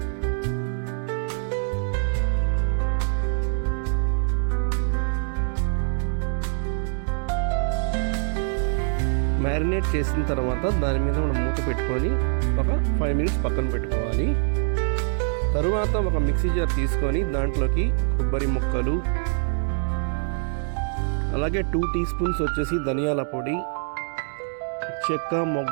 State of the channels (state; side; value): silent; left; 62 dB below the other